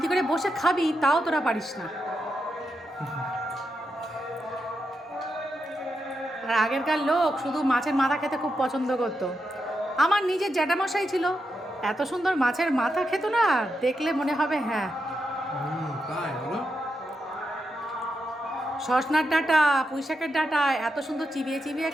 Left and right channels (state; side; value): normal; both; correlation 0.85